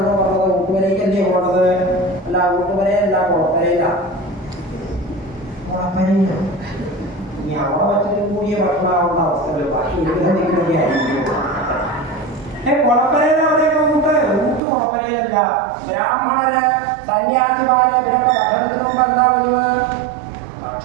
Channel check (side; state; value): left; drops out; at 14.6 s